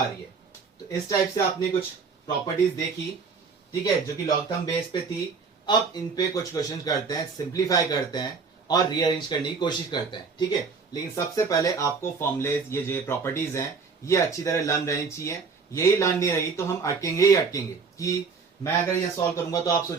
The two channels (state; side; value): quieter; left; 5.1 dB